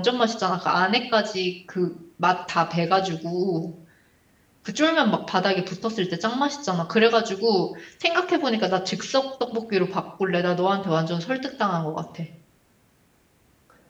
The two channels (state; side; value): identical; both; correlation 1.00